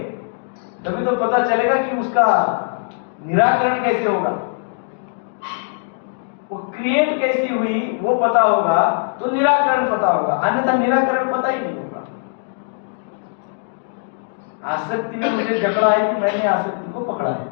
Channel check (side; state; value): right; silent; digital silence